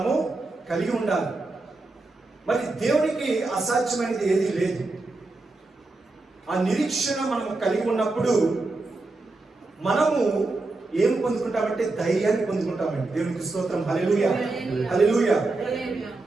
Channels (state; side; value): quieter; left; 3.3 dB